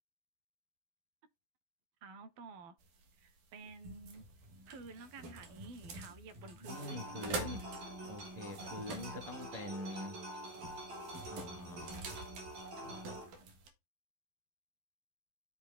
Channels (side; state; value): left; late; 12 ms